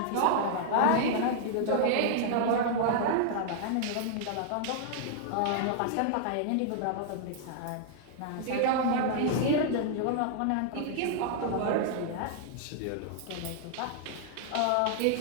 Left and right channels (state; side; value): different; both; correlation -0.01